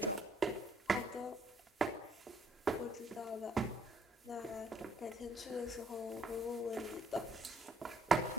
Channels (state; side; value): normal; both; correlation 0.66